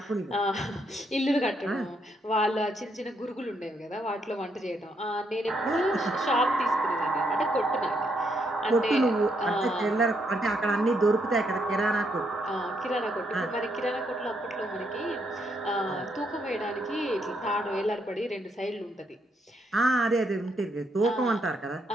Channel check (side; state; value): both; normal; correlation 0.75